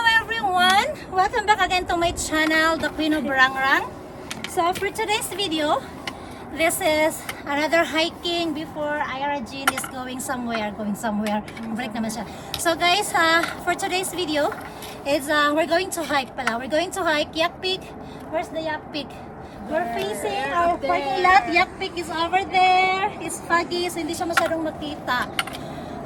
everyone! Welcome back again to my channel, The Queen of Barangrang. So for today's video, this is another hiking before Ira Jean is going somewhere. Break naman siya. So guys, for today's video, is we're going to hike pala. We're going to hike Yak Peak. Where's the Yak Peak? We're facing our parking lot. Yak Peak is over there. It's foggy, so hindi siya masyadong makita.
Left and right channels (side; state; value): both; identical; correlation 1.00